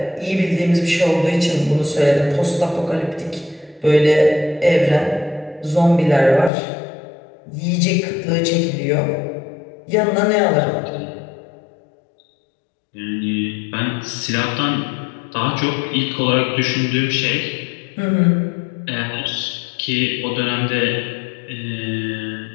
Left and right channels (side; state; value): right; drops out; at 6.5 s